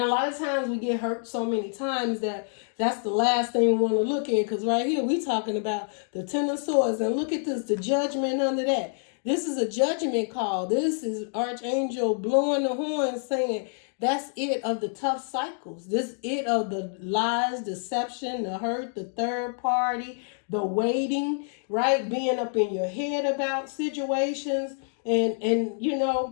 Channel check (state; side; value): silent; right; 60 dB below the other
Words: lot of times we get hurt so many times that that's the last thing we want to look at. Because right here we talking about the Ten of Swords. And look at this, the Judgment under that. This is a judgment call. This is Archangel blowing the horn saying, that's it of the tough cycles. This it of the lies, deception, the hurt, the third party, the waiting, right? Being up in your head about situations. And you